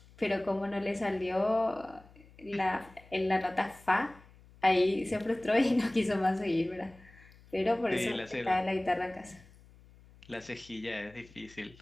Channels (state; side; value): noise; left; hum, 24 dB below the sound